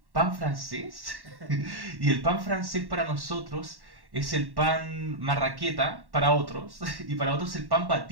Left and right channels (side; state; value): left; late; 1.1 ms